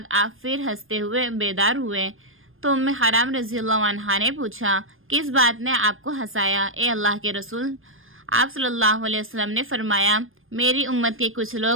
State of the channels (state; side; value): late; left; 0.59 ms